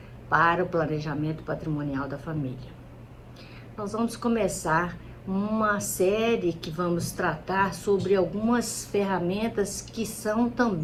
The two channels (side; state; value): both; identical; correlation 1.00